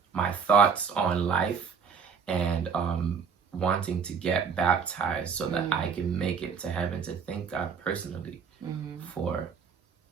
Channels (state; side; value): quieter; left; 6.2 dB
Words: my thoughts on life and wanting to get baptized so that I can make it to heaven, to thank God personally for